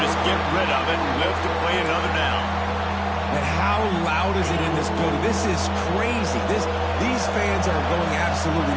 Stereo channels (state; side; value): identical; both; correlation 1.00